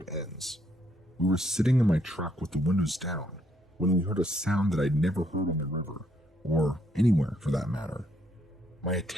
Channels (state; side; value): normal; both; correlation 0.72